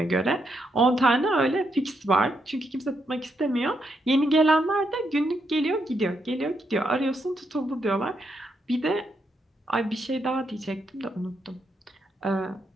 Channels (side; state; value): both; normal; correlation 0.79